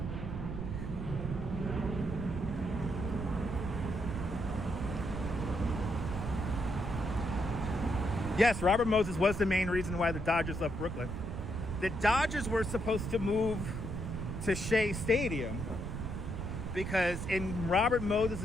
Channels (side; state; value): right; noise; rumble, 5 dB below the sound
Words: Yes, Robert Moses was the main reason why the Dodgers left Brooklyn. The Dodgers were supposed to move to Shea Stadium because in Robert